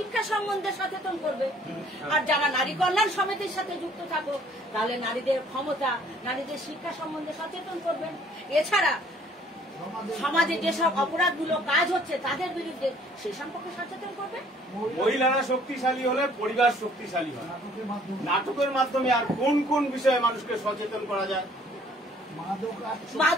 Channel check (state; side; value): normal; both; correlation 0.58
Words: সম্বন্ধে সচেতন করবে, আর যারা নারী কল্যাণ সমিতির সাথে যুক্ত থাকো তাহলে নারীদের ক্ষমতা, নারীদের শিক্ষা সম্বন্ধে সচেতন করবেন। এছাড়া সমাজে যেসব অপরাধগুলো কাজ হচ্ছে তাদের বিরুদ্ধে সে সম্পর্কে সচেতন করবে। মহিলারা শক্তিশালী হলে পরিবার শক্তিশালী হয়। নাটকের মাধ্যমে আর কোন কোন বিষয়ে মানুষকে সচেতন করা যায়?